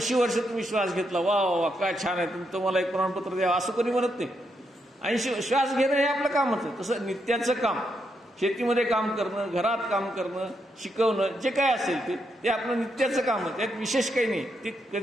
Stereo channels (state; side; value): normal; both; correlation 0.80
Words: वर्ष तुम्ही श्वास घेतला, वा वा वा काय छान आहे, तुम्हाला एक प्रमाणपत्र द्यावं असं कोणी म्हणत नाही. 80 श्वास घेणं हे आपलं कामच आहे. तसं नित्याचं काम, शेतीमध्ये काम करणं, घरात काम करणं, शिकवणं, जे काय असेल ते आपलं नित्याचं काम आहे. त्यात विशेष काही नाही. ते